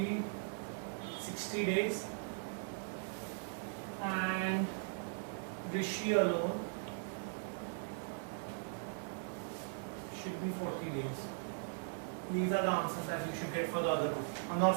60 days and Rishi alone should be 40 days. These are the answers that you should get for the other two. I'm not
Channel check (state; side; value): silent; left; 52 dB below the other